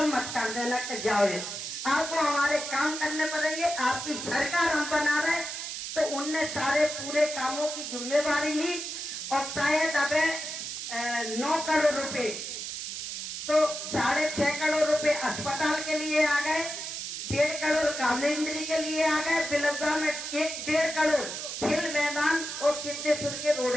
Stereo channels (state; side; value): noise; right; hiss, 6 dB below the sound